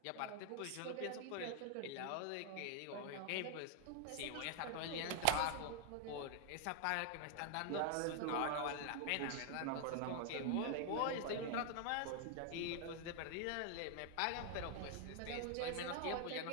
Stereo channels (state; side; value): different; both; correlation 0.00